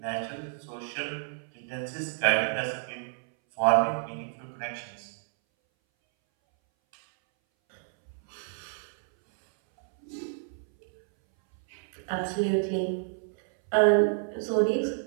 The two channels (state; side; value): silent; left; 58 dB below the other